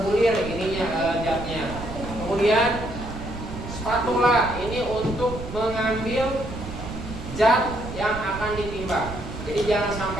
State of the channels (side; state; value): right; noise; rumble, 9 dB below the sound